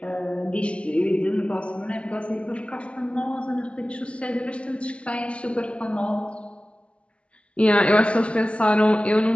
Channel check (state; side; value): late; right; 0.060 ms